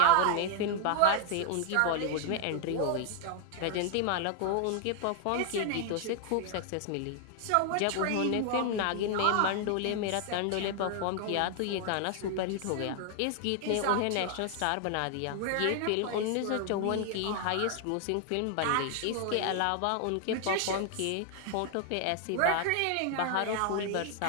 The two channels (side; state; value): both; different; correlation 0.00